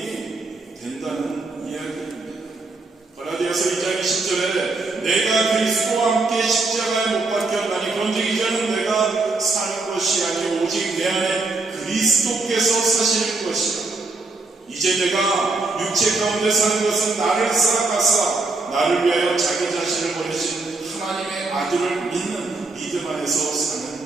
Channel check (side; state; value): left; quieter; 3.5 dB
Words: 된다는 이야기입니다. 갈라디아서 2장 10절에 내가 그리스도와 함께 십자가에 못 박혔나니 그런즉 이제는 내가 사는 것이 아니오 오직 내 안에 그리스도께서 사실 것이라. 이제 내가 육체 가운데 사는 것은 나를 살아가사 나를 위하여 자기 자신을 버리신 하나님의 아들을 믿는 믿음 안에서